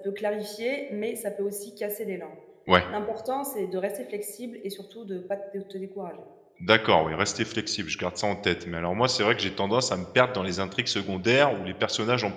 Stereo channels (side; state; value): both; identical; correlation 1.00